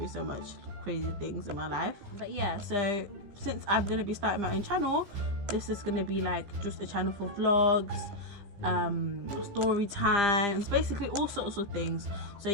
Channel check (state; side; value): late; left; 15 ms